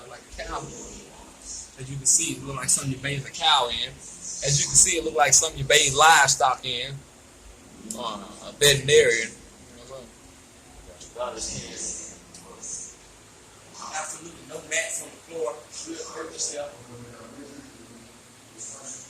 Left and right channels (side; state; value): both; identical; correlation 1.00